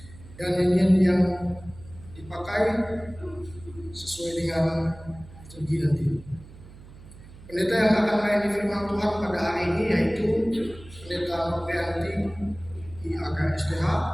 dan nyanyian yang dipakai sesuai dengan liturgi nanti. Pendeta yang akan melayani firman Tuhan pada hari ini yaitu Pendeta Noprianti IAK STH,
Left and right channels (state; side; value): noise; right; hum, 19 dB below the sound